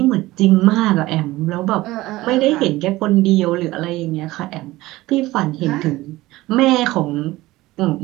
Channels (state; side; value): quieter; left; 18.2 dB